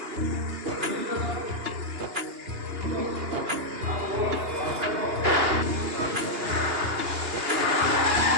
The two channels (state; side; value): late; left; 2.8 ms